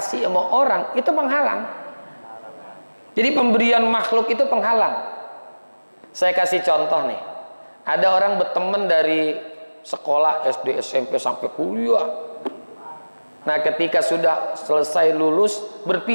sama orang, itu penghalang. Jadi pemberian makhluk itu penghalang. Saya kasih contoh nih. Ada orang berteman dari sekolah SD, SMP sampai kuliah. Nah, ketika sudah selesai lulus,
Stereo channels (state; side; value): inverted; both; correlation -1.00